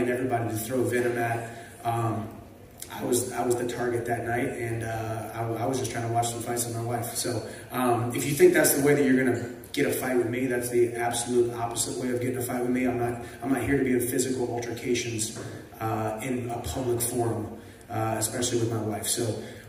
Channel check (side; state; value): both; identical; correlation 1.00